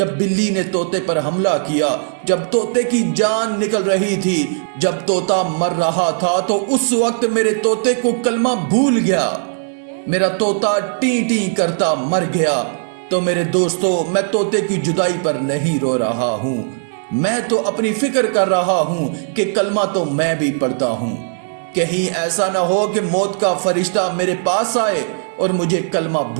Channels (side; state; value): left; silent; digital silence